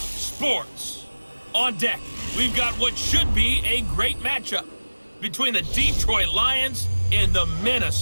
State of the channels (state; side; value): inverted; both; correlation -1.00